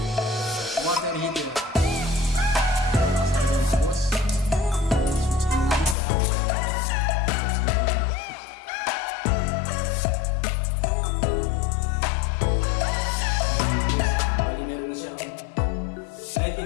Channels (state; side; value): drops out; right; at 6.0 s